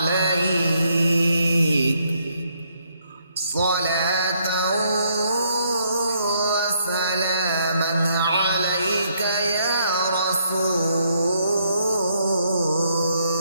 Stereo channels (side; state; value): both; inverted; correlation -0.72